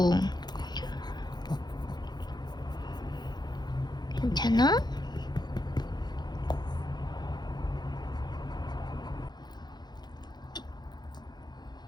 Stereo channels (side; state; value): right; late; 0.21 ms